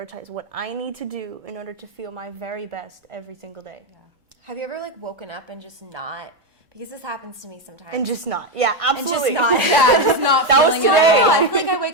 what I need to do in order to feel my very best every single day. Yeah. Have you ever, like, woken up and just not, because this happens to me sometimes. And just not. Yeah, absolutely. And just not. Yeah, just not That was feeling it today. at all. I feel like I wake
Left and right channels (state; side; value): normal; both; correlation 0.07